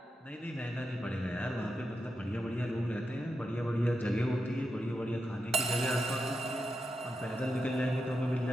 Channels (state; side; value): normal; both; correlation 0.87